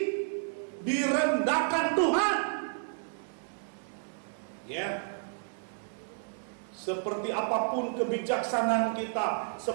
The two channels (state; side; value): silent; left; digital silence